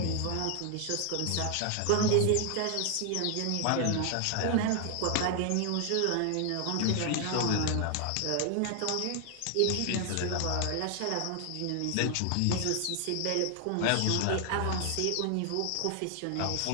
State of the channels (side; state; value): both; different; correlation 0.00